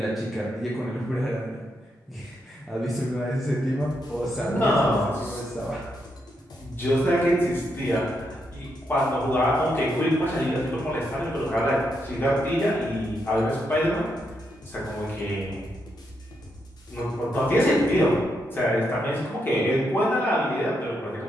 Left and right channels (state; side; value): normal; both; correlation 0.81